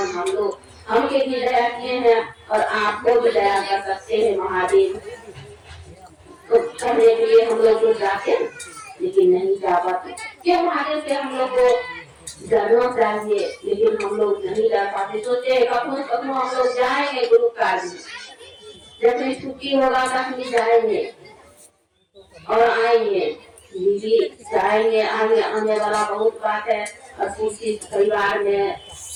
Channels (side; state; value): both; identical; correlation 1.00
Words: हम लोग हमके भी दया किए हैं और आपको भी दया कर सकते हैं महादेव। तो करने के लिए हम लोग जाते लेकिन नहीं जा पाते। क्यों महादेव से हम लोग को डरना चाहिए, लेकिन हम लोग नहीं डर पाते। सोचे कखनो कखनो हम लोग जाएंगे गुरु कार्य में, जब भी छुट्टी होगा तभी जाएंगे और आएंगे। दीदी जाएंगे आने वाला बहुत बात है और किसी परिवार में